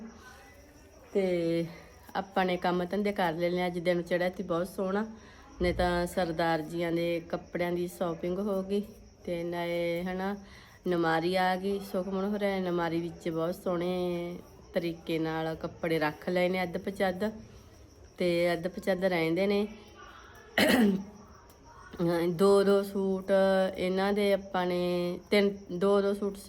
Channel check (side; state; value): both; identical; correlation 1.00